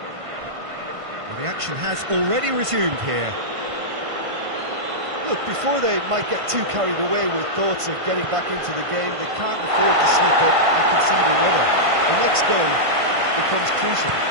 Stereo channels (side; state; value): left; late; 1.5 ms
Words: Well, the action has already resumed here. Look, before they might get too carried away with thoughts of getting back into the game, they can't afford to slip up and concede another. The next goal becomes crucial.